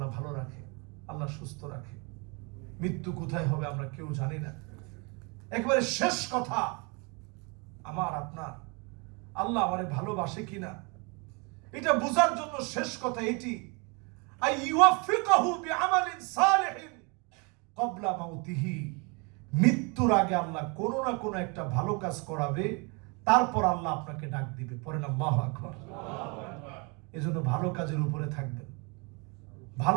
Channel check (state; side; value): quieter; left; 31.5 dB